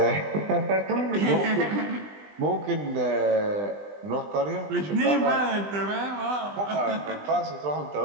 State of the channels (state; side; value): late; left; 20 ms